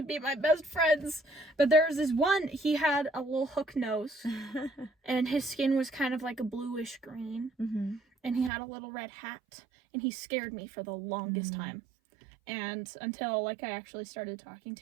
be my best friends. But there was this one, he had a little hook nose, and his skin was kind of like a bluish green, and he had a little red hat, and he scared me for the longest time. And until, like, I actually started talking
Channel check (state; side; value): drops out; left; at 8.5 s